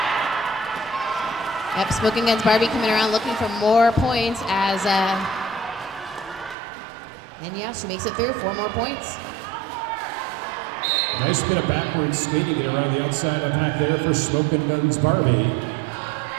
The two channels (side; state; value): left; drops out; at 6.6 s